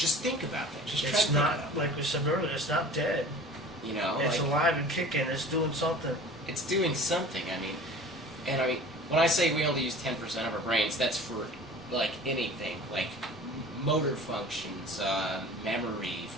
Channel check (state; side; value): normal; both; correlation 0.41